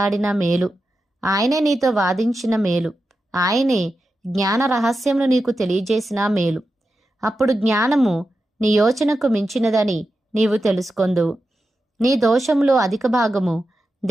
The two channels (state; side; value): normal; both; correlation 0.90